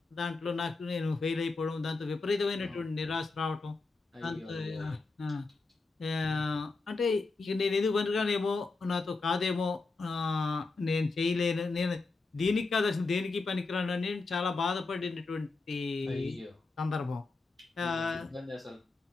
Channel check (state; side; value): quieter; right; 3.8 dB